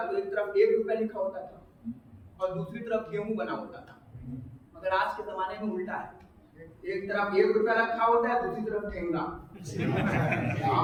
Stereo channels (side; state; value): both; identical; correlation 1.00